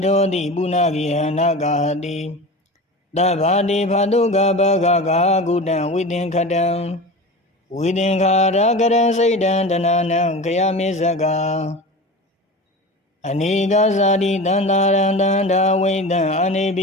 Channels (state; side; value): normal; both; correlation 0.31